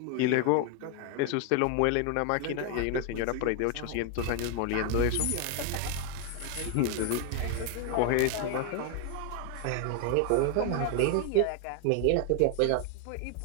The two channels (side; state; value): both; different; correlation 0.01